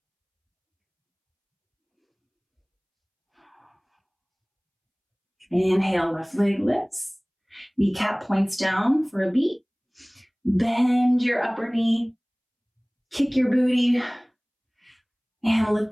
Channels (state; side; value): identical; both; correlation 1.00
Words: Inhale, left leg lifts. Kneecap points down for a beat. Bend your upper knee. Kick your booty. And lift